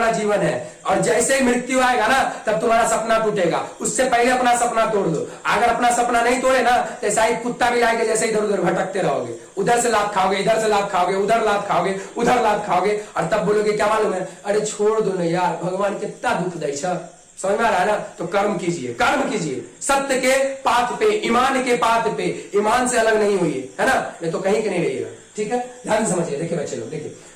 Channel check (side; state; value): both; identical; correlation 1.00